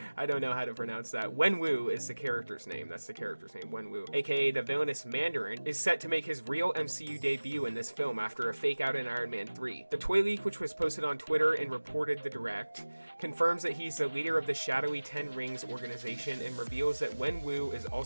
I don't know how to pronounce that, Wenwu is the character's name. That's the character's name, Wenwu, aka the villainous Mandarin, is set to make his real MCU debut in this film after a fake out in Iron Man 3. The toy leak, which was posted on Twitter and reported the direct, confirms that he's the leader of the shadowy Ten Rings organization and reveals that Wenwu is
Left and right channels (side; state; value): both; inverted; correlation -1.00